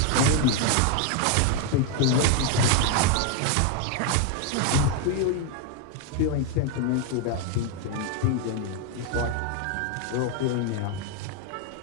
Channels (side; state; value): both; different; correlation 0.01